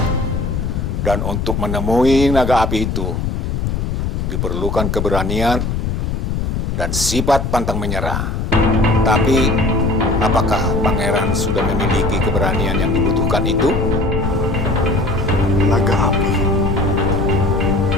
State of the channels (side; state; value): left; noise; rumble, 1 dB below the sound